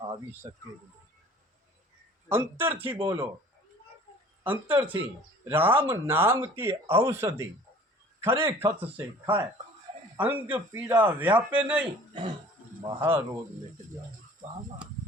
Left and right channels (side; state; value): both; normal; correlation 0.49